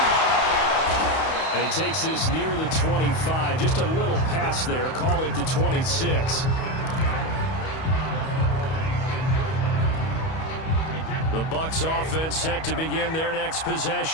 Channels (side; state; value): right; late; 31 ms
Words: And he takes this near the 25. Just a little pass there. Call it the 26. The Bucs offense set to begin their next